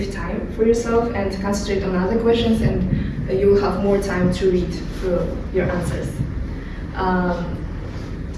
time for yourself and concentrate on other questions and you will have more time to read through your answers.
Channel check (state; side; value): identical; both; correlation 1.00